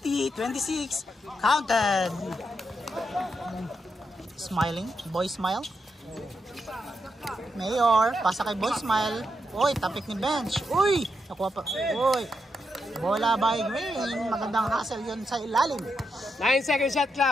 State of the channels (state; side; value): normal; both; correlation 0.83